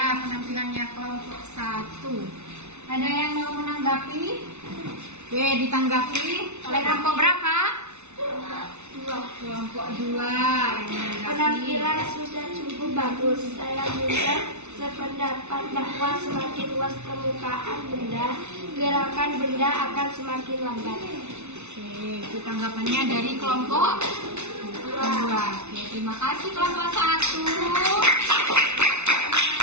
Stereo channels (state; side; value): late; left; 0.82 ms